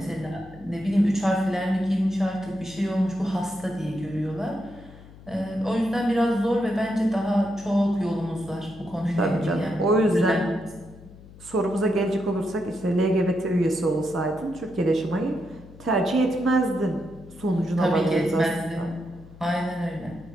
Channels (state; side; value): noise; left; hum, 20 dB below the sound